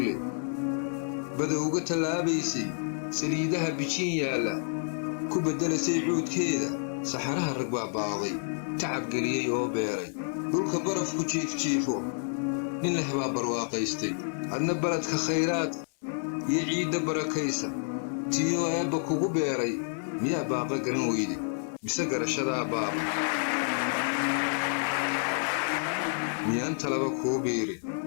leh bada uga tallaabaysay saliidaha bijin yaalla ku beddelasay cuudkeeda saxaraha rag baa baaqday tacab geliyey oo beeray dhulka barafku jiifjiifo nin leh baa barwaaqaystay adna baladka khayraad iyo ciidda barakaysa tiyoo eebba kugu beeray miyaa baaqa garan weyde mise garashadaa baaba miyaan talaba kuu biirin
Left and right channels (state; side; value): silent; right; 58 dB below the other